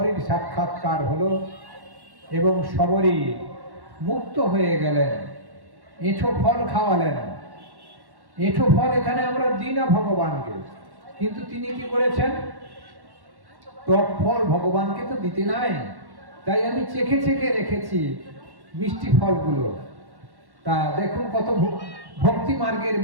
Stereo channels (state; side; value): late; left; 1.1 ms